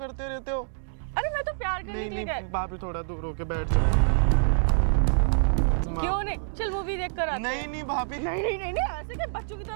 रहते हो। अरे मैं तो प्यार करने के लिए नहीं, भाभी थोड़ा दूर होके बैठ जाओ। क्यों नहीं? चल मूवी देख कर आते हैं। नहीं भाभी। नहीं ऐसे क्या बच्चों की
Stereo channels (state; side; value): silent; left; digital silence